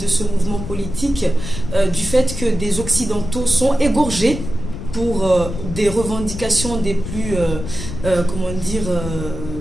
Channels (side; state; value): left; noise; rumble, 8 dB below the sound